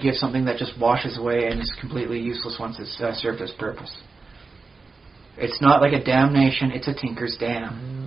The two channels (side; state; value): left; quieter; 4.2 dB